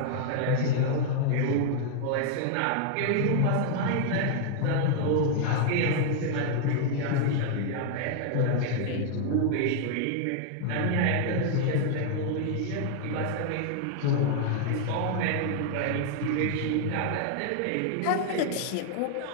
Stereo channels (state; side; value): different; both; correlation 0.00